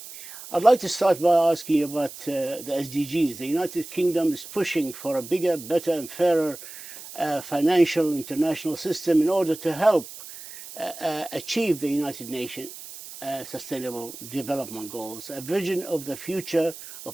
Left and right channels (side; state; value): right; noise; hiss, 14 dB below the sound